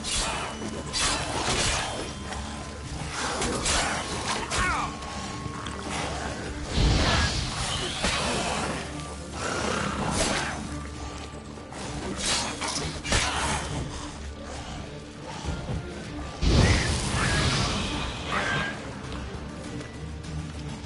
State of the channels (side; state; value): both; identical; correlation 1.00